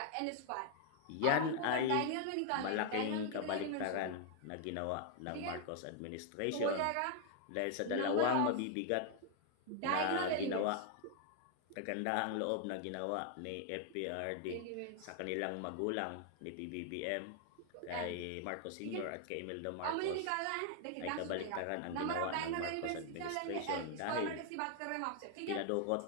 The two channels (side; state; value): both; different; correlation 0.00